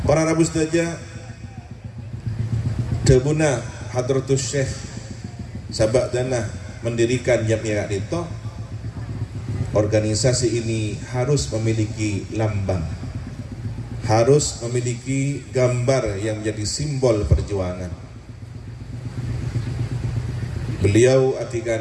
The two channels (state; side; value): identical; both; correlation 1.00